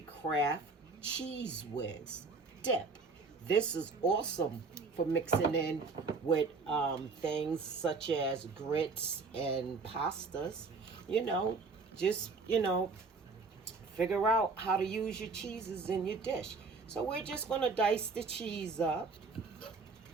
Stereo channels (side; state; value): left; quieter; 4.2 dB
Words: Kraft Cheese Whiz dip. This is awesome for mixing in with things such as grits and pastas. You know, just, figure out how to use your cheeses in your dish. So we're just going to dice the cheese up.